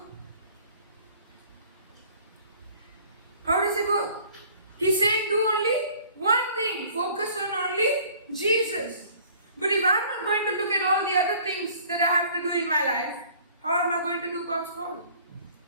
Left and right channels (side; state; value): both; inverted; correlation -0.53